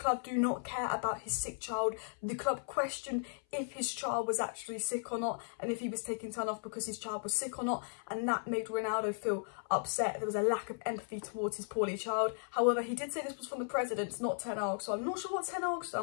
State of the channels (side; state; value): right; silent; 54 dB below the other